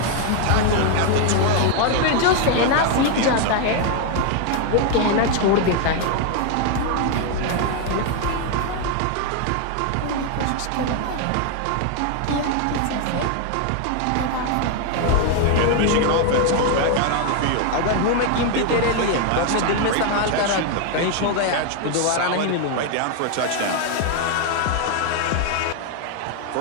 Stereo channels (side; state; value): both; different; correlation 0.01